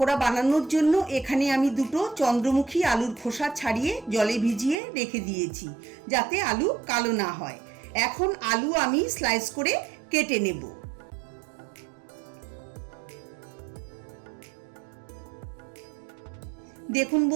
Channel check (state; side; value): drops out; left; at 4.8 s